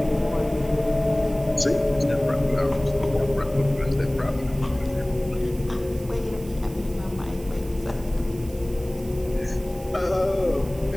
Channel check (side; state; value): right; noise; hiss, 21 dB below the sound